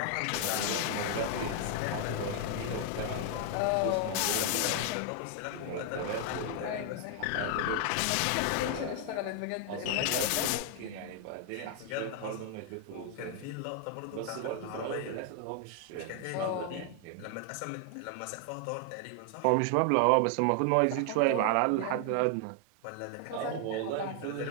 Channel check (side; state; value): both; different; correlation 0.00